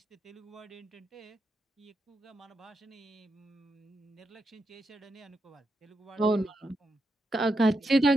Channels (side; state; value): both; normal; correlation 0.84